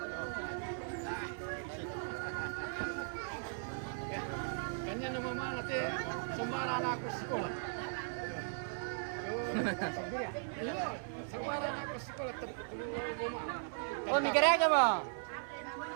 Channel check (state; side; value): silent; left; 52 dB below the other